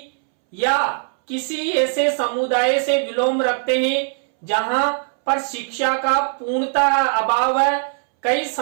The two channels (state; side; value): silent; left; 65 dB below the other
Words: या किसी ऐसे समुदाय से विलोम रखते हैं जहां पर शिक्षा का पूर्णतः अभाव है। कई